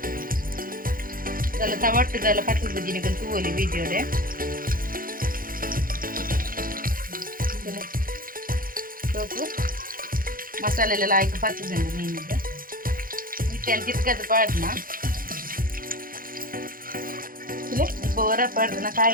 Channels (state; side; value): late; left; 0.41 ms